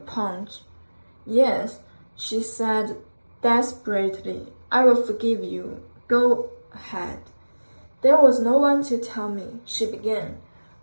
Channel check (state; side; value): inverted; both; correlation -1.00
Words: Yes, she said desperately. I will forgive you. Go ahead. There was no one to tell me, she began.